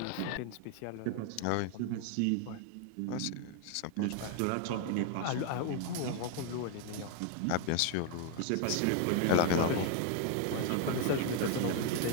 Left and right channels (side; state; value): both; different; correlation 0.01